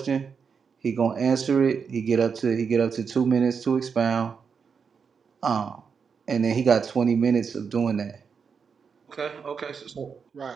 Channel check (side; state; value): left; quieter; 6.0 dB